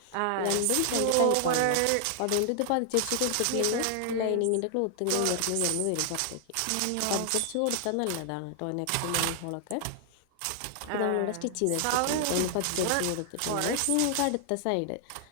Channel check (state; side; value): different; both; correlation 0.00